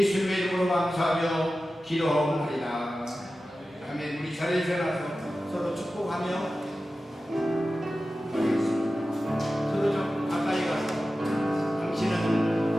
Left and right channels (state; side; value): normal; both; correlation 0.94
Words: 이름으로 감사하며 기도하옵나이다. 아멘. 우리 자리에서 일어나서 서로 축복하며 서로 좀 가까이 가서